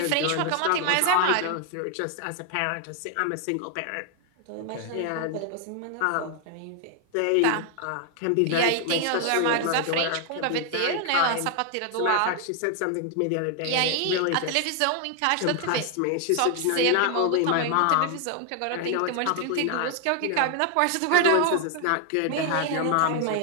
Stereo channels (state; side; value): different; both; correlation 0.00